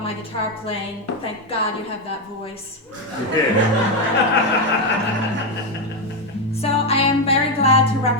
my guitar playing, thank God you have that voice. So I am very glad to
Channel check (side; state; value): both; normal; correlation 0.08